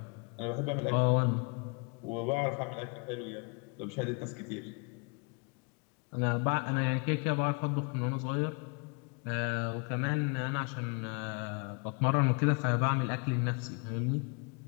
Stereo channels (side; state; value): right; quieter; 35.1 dB